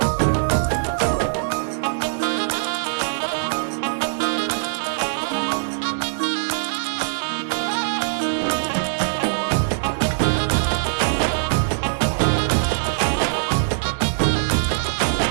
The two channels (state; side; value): silent; left; 62 dB below the other